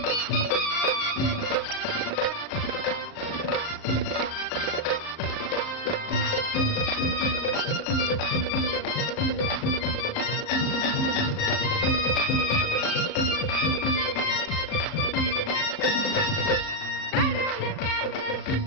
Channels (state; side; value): late; right; 38 ms